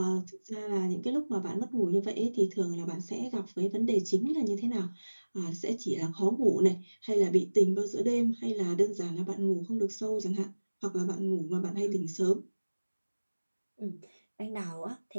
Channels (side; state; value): both; inverted; correlation -1.00